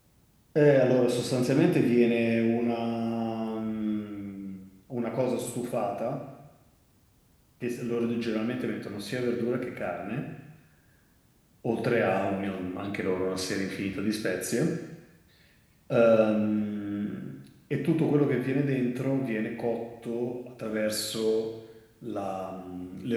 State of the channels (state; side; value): identical; both; correlation 1.00